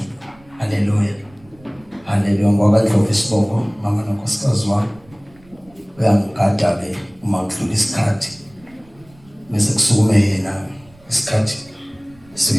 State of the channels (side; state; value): right; noise; rumble, 28 dB below the sound